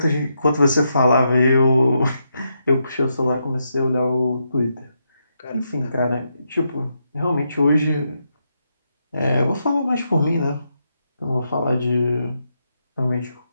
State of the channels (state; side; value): inverted; both; correlation -0.82